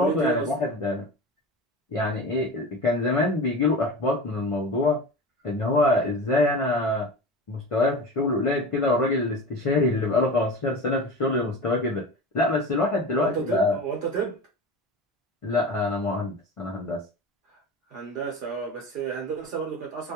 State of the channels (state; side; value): normal; both; correlation 0.31